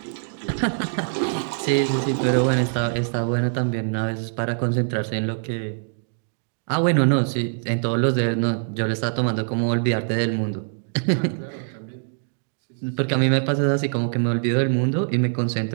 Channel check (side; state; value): left; silent; digital silence